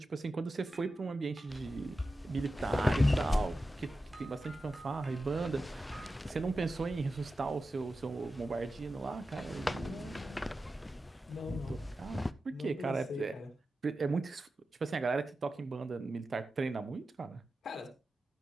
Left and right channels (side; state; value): both; normal; correlation 0.92